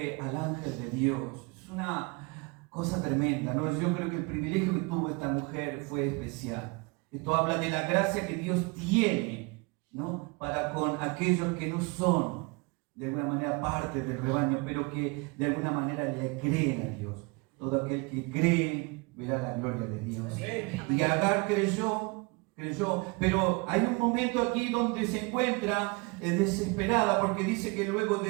al ángel de Dios, es una cosa tremenda, ¿no? Yo creo que el privilegio que tuvo esta mujer fue especial. Esto habla de la gracia que Dios tiene, ¿no?, para con aquellos que no son de alguna manera parte del rebaño, pero que de alguna manera le creen a Dios. Todo aquel que cree verá la gloria de Dios. Y Agar creyó, pero hay un momento aquí donde se encuentra desesperada, porque dice que luego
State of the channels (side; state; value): left; quieter; 28.2 dB